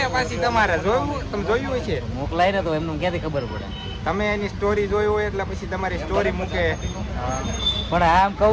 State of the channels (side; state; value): both; identical; correlation 1.00